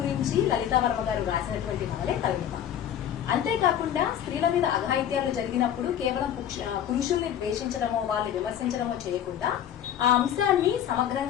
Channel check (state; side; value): quieter; right; 10.1 dB